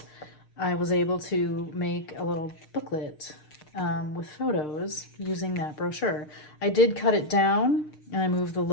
I was able to make a little booklet with photos using that brochure. I did cut it down and I moved the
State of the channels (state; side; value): late; right; 6.6 ms